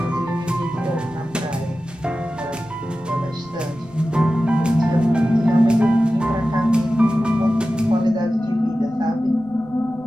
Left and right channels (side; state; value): right; noise; rumble, 25 dB below the sound